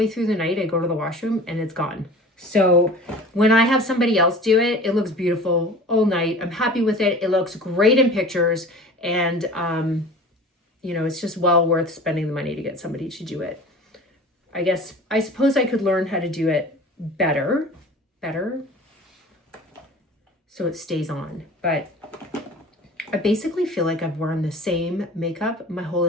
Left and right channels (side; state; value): both; normal; correlation 0.41